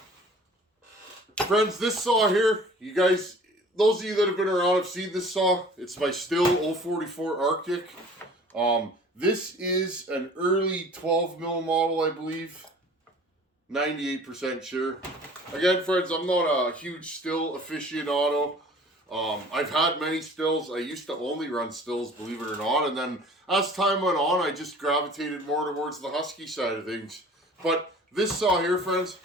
Friends, this saw here, you guys, those of you that have been around have seen this saw. It's my Stihl 044 Arctic. This is an early 12 mil model, I believe. 98% sure. Again, friends, I'm not a huge Stihl aficionado. I've had many Stihls. I used to only run Stihls, believe it or not. And then as time went on, I just gravitated more towards the Husky side of things. But this saw here, friends,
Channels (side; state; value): both; normal; correlation 0.48